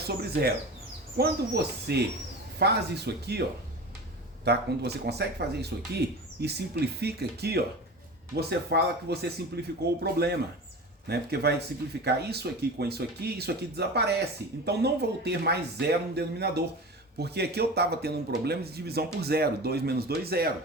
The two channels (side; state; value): both; normal; correlation 0.32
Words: 0. Quando você faz isso aqui, ó, tá? Quando você consegue fazer isso aqui e simplifica aqui, ó, você fala que você simplificou o problema, né? Porque vai simplificar isso aqui com isso aqui desaparece. Então não vou ter mais 0 no denominador, porque aqui eu estava tendo um problema de divisão por 0. 2 menos 2, 0.